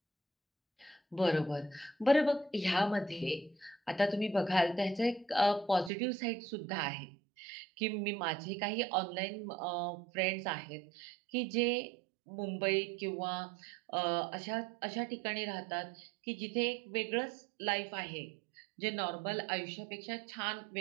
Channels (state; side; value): drops out; left; at 5.9 s